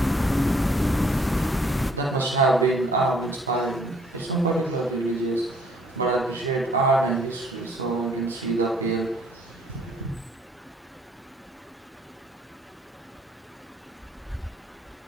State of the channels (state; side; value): normal; both; correlation 0.61